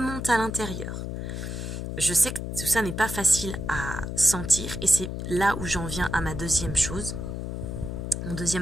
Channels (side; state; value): left; noise; hum, 5 dB below the sound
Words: à l'intérieur. Je sais que tout ça n'est pas facile à sentir. Et c'est là où j'en viens à ma deuxième chose. Mon